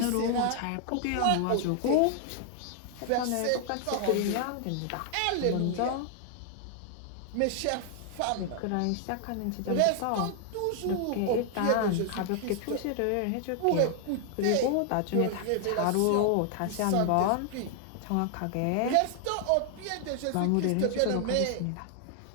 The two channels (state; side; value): different; both; correlation 0.00